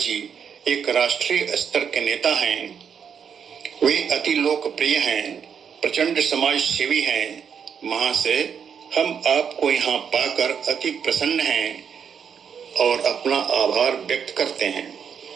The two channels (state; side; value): quieter; left; 7.3 dB